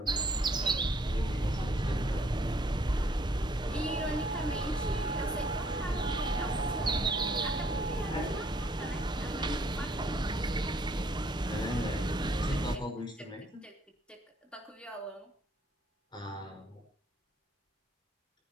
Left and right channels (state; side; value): normal; both; correlation 0.65